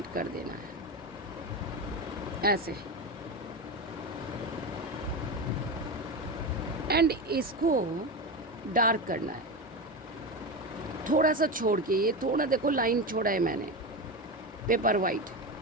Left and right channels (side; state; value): both; normal; correlation 0.19